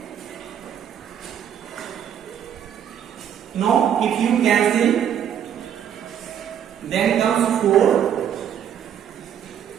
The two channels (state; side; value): quieter; left; 9.3 dB